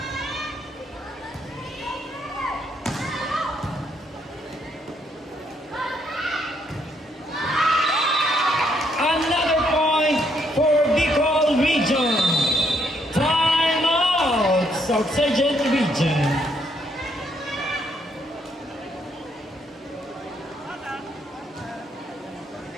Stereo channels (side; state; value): both; normal; correlation 0.72